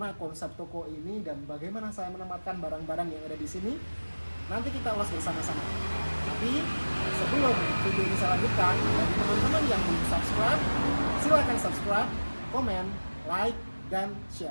konsep toko ini, dan bagaimana saya menempatkan barang-barang yang ada di sini. Nanti kita ulas bersama-sama. Tapi sebelum video ini saya lanjutkan, bagi teman-teman yang belum subscribe, silakan subscribe, komen, like, dan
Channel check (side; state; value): both; inverted; correlation -1.00